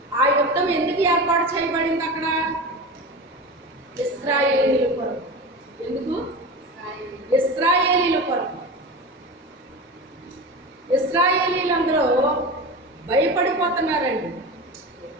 ఆ యుద్ధం ఎందుకు ఏర్పాటు చేయబడింది అక్కడ? ఇశ్రాయేలీయుల కొరకు. ఎందుకు? ఇశ్రాయేలీయుల కొరకు. ఇశ్రాయేలీయులందరూ భయపడిపోతున్నారండి.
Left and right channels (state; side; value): normal; both; correlation 0.27